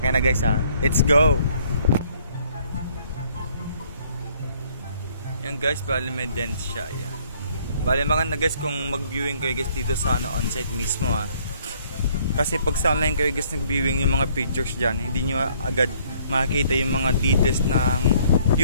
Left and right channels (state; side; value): inverted; both; correlation -0.63